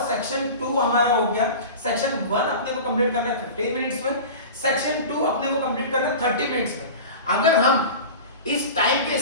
सेक्शन 2 हमारा हो गया। सेक्शन 1 अपने को कंप्लीट करना है 15 मिनट्स में, सेक्शन 2 अपने को कंप्लीट करना है 30 मिनट्स में। अगर हम इस टाइम के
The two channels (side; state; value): both; inverted; correlation -0.33